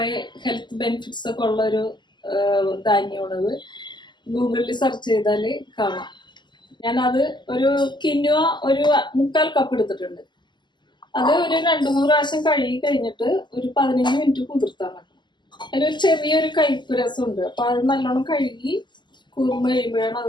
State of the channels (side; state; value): right; late; 0.21 ms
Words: ഹെൽത്ത് ബെനിഫിറ്റ്സ് ഒക്കെ ഉള്ള ഒരു ധാന്യമാണത്. ഗൂഗിളിൽ സെർച്ച് ചെയ്താൽ കാണാം. ഞാനത് ഒരു കിൻവ ഒരു 3/4 കപ്പ് എടുത്തിട്ടുണ്ട്. അത് ഒരു 2-3 പ്രാവശ്യം കഴുകി കഴിഞ്ഞിട്ട് ഒരു 15 മിനിറ്റ് കുതിർത്താൻ വെക്കണം. അതിലൊരു ചെറിയൊരു കയ്പ്പ് രസമുണ്ട്. അപ്പൊ അത് നല്ലോണം കഴുകി കുറുമ്പ് കഴിയുമ്പോഴാണ്